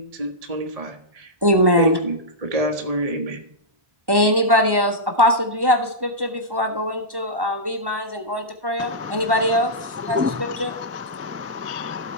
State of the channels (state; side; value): late; left; 1.1 ms